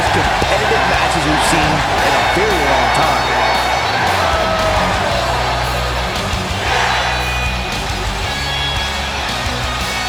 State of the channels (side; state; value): both; identical; correlation 1.00